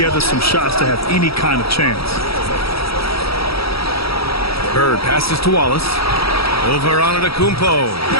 some shots to have any kind of chance. Bird passes to Wallace. Over on Antetokounmpo.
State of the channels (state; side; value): late; right; 0.76 ms